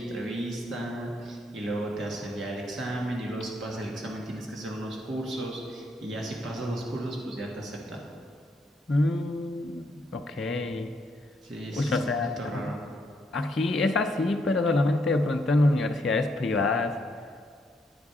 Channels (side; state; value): both; normal; correlation 0.75